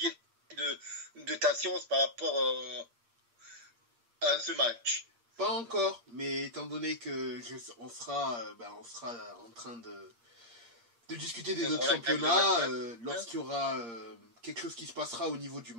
de ta science par rapport à ce match. Pas encore, mais étant donné que on sera en train de discuter des autres championnats, lorsqu'il y aura quelque chose qui se passera au niveau du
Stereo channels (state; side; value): late; left; 8.6 ms